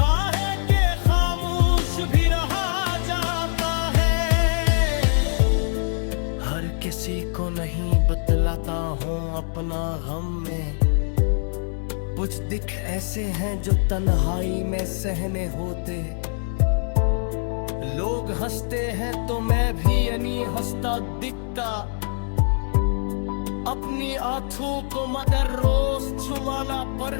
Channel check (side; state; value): right; silent; digital silence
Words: है कि खामोश भी रहा जाता है। हर किसी को नहीं बतलाता हूँ अपना गम में, कुछ दिख ऐसे हैं जो तन्हाई में सहने होते। लोग हंसते हैं तो मैं भी यानी हंसता दिखता, अपनी आंखों को मगर रोज छुमाना